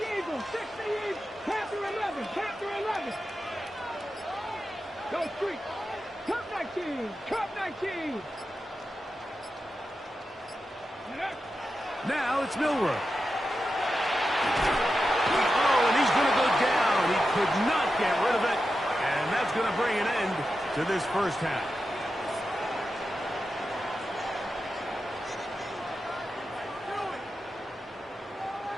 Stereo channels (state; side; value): normal; both; correlation 0.90